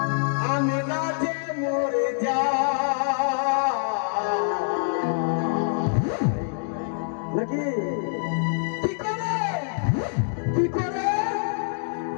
আমি লাজে মরে যাই নাকি। কি করে কি করে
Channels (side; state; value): right; silent; digital silence